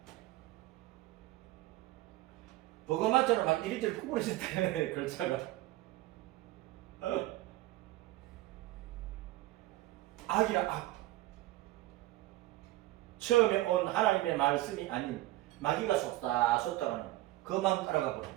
버거맞잖아. 막 이리저리 구부러질 때 글자가. 악이라 악. 처음에 온 하나님의 말씀이 아닌 마귀가 속닥하는 그 마음 따라가 버린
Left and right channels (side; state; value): left; quieter; 17.4 dB